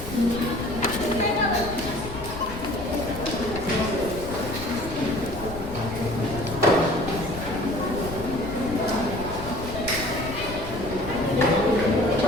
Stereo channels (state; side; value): noise; left; rumble, 10 dB below the sound